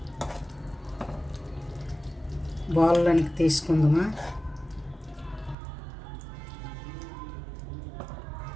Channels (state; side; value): drops out; left; at 5.6 s